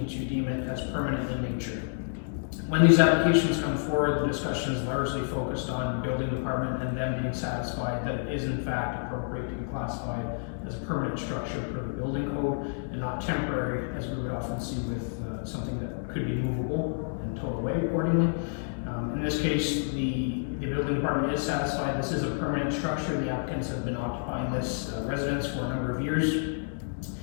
to deem it as permanent in nature. When these applications come forward, the discussion is largely focused on the building department and them being satisfied that it is in fact appropriate to be classified as a permanent structure per the building code and not temporary, as we would often see with something that could be movable and towed away accordingly. In this case, the building department is satisfied this is a permanent structure. The applicants have been occupying this residence for a number of years.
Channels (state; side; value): silent; right; digital silence